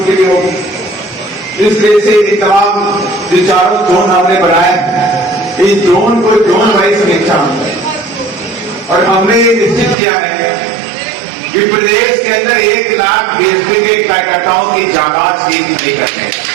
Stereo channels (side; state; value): left; drops out; at 10.0 s